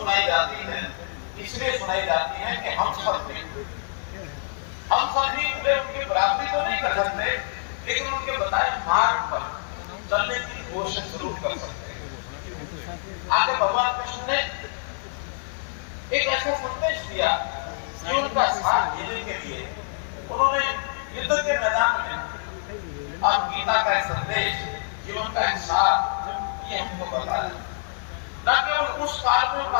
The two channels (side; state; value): right; silent; digital silence